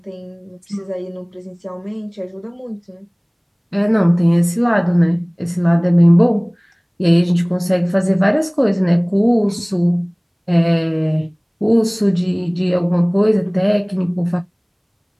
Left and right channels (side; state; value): both; identical; correlation 1.00